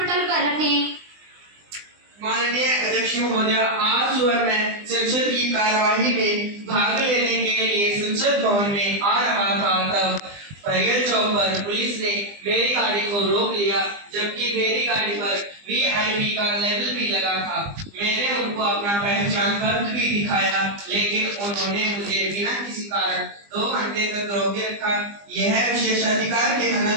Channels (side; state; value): left; late; 20 ms